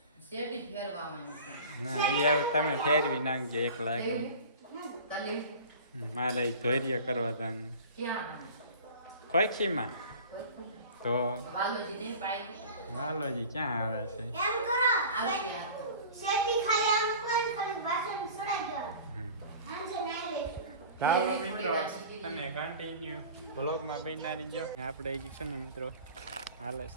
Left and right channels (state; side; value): inverted; both; correlation -0.41